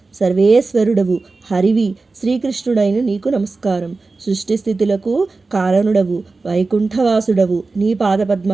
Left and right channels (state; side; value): quieter; left; 3.8 dB